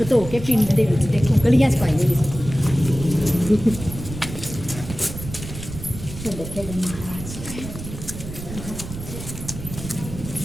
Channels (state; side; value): noise; right; rumble, 10 dB below the sound